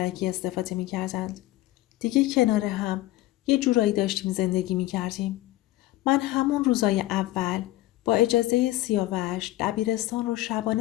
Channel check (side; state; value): right; quieter; 16.6 dB